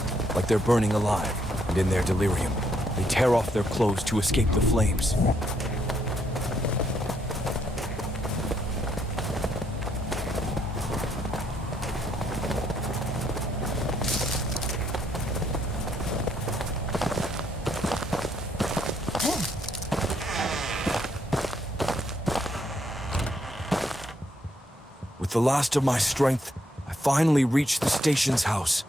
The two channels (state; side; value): normal; both; correlation 0.73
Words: like they're burning alive, and in their delirium, they tear off their clothes to escape the flames. With the last of my strength, I finally reached the station's house,